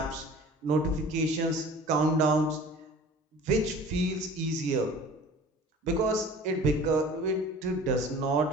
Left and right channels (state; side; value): normal; both; correlation 0.43